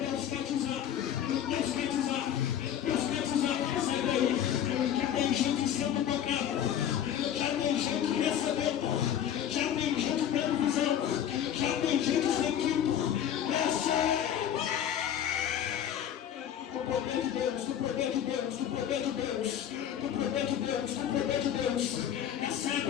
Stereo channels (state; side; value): quieter; right; 9.9 dB